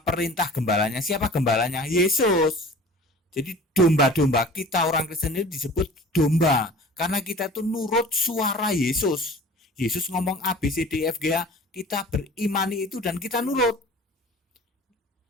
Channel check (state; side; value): normal; both; correlation 0.44